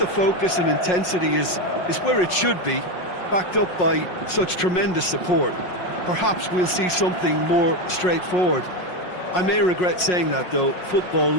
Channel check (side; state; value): right; late; 5.5 ms